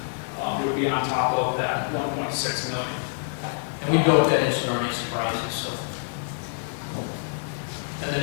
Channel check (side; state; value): right; silent; 59 dB below the other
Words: would be on top of that $1.6 million. And we built that in, so there aren't any surprises, so. And